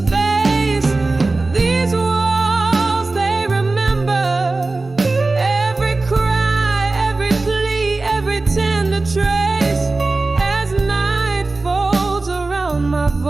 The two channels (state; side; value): quieter; left; 3.4 dB